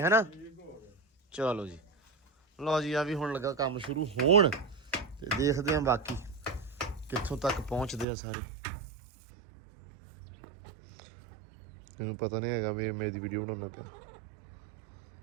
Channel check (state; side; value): drops out; left; at 8.1 s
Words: ਹੈਨਾ ਚਲੋ ਜੀ ਲਓ ਜੀ ਆ ਵੀ ਹੁਣ ਲੱਗਾ ਕੰਮ ਸ਼ੁਰੂ ਹੋਣ ਤੇ ਦੇਖਦੇ ਆਂ ਬਾਕੀ ਕਿੱਥੋਂ ਤੱਕ ਪਹੁੰਚਦੇ ਆ ਸਾਰੇ ਇਹਨੂੰ ਪਤਾ ਨਹੀਂ ਹੈਗਾ ਵੀ ਮੇਰੀ ਵੀਡੀਓ ਬਣਾਉਣਾ ਪਿਆ